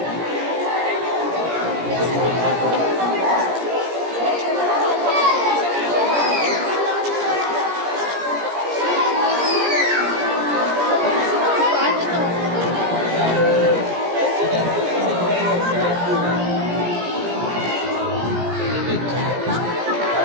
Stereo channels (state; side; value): late; left; 17 ms